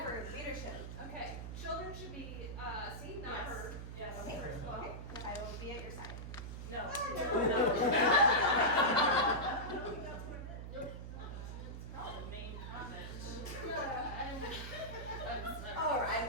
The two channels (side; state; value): right; noise; hum, 8 dB below the sound